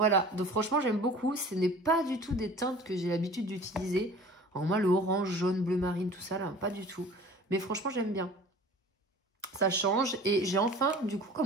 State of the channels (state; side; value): normal; both; correlation 0.44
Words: donc franchement, j'aime beaucoup. Ce n'est pas du tout des teintes que j'ai l'habitude d'utiliser. Alors moi, le orange, jaune, bleu marine, tout ça, là, pas du tout. Mais franchement, j'aime bien. Ça change. Et j'ai enfin, du coup,